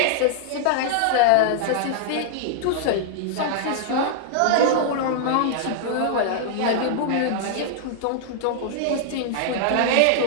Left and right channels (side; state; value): both; different; correlation -0.01